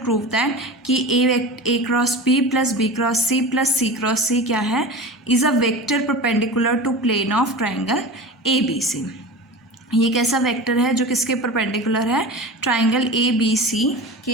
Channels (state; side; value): normal; both; correlation 0.32